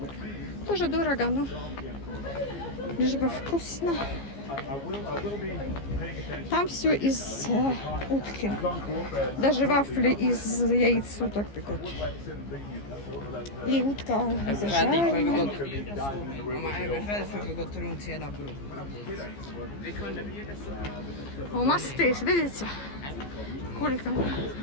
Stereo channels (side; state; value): right; late; 15 ms